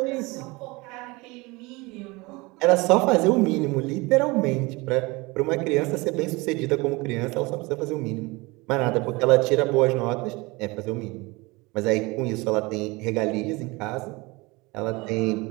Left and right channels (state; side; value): quieter; left; 24.2 dB